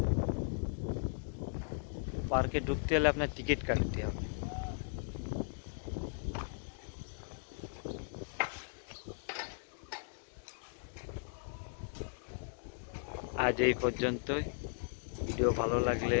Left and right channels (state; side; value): silent; right; digital silence